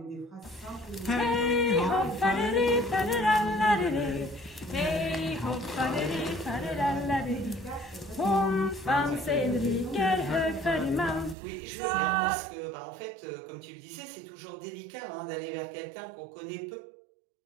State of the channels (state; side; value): drops out; left; at 11.4 s